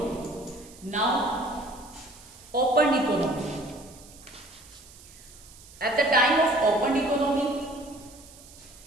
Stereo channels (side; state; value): right; noise; hiss, 21 dB below the sound